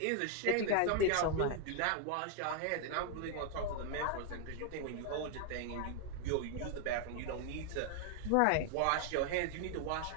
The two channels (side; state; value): both; different; correlation 0.00